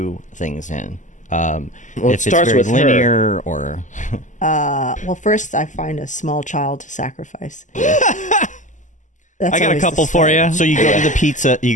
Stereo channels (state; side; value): late; right; 0.36 ms